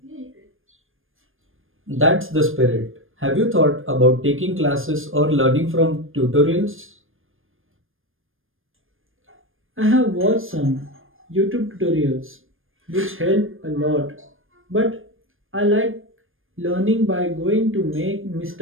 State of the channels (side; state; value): left; late; 0.59 ms